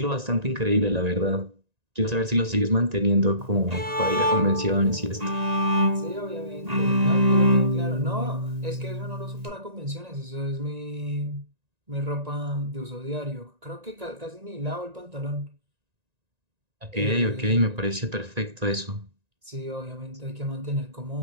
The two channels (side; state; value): left; late; 1.9 ms